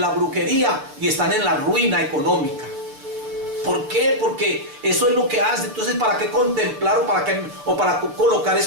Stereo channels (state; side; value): late; left; 6.9 ms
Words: brujería y están en la ruina económica. ¿Por qué? Porque eso es lo que hace. Entonces, ¿para qué contemplar o para colocar